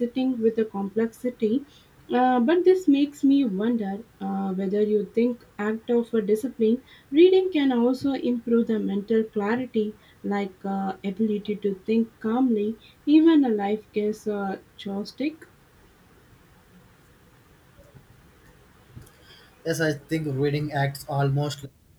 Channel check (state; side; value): identical; both; correlation 1.00